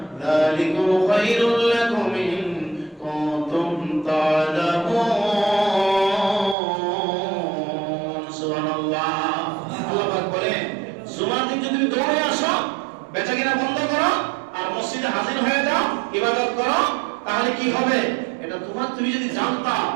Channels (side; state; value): left; drops out; at 6.6 s